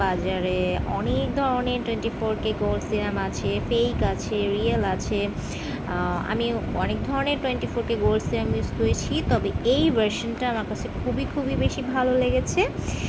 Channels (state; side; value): identical; both; correlation 1.00